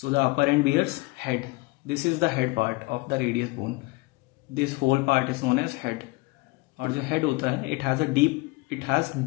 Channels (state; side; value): quieter; right; 23.6 dB